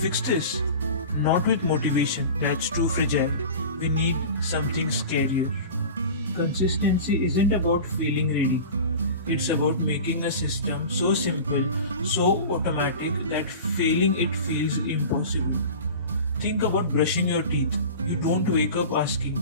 this? Not with motivation, that's too fragile. We need something scarier. Consistency isn't about feeling ready. It's about making a system so simple, so automatic that failing it feels impossible. Think about brushing your teeth. You don't wake up asking,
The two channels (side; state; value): both; inverted; correlation -0.35